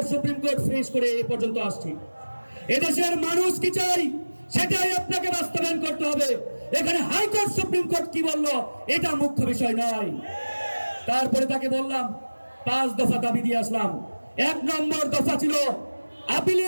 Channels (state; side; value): inverted; both; correlation -1.00